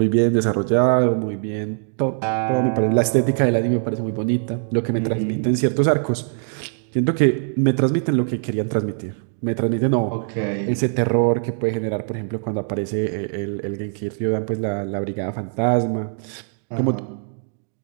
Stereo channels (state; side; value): silent; left; 60 dB below the other